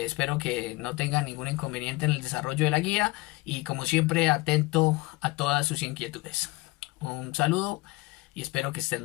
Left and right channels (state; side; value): quieter; right; 22.3 dB